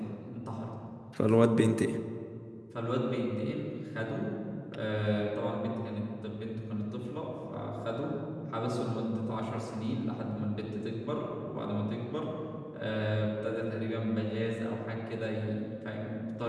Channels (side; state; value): both; identical; correlation 1.00